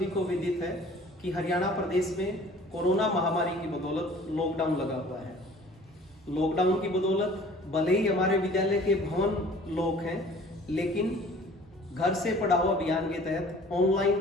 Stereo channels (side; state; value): both; normal; correlation 0.49